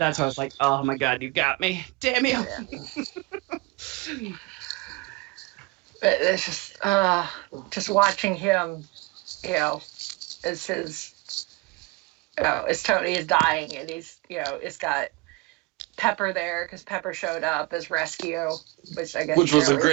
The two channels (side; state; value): left; quieter; 24.7 dB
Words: why I was like, oh my god, you got me. Damn you. But it's just watching him, you know, as his, as Tony is dying, and he's, it's got Pepper there because Pepper showed up as rescue, which I guess Which was a is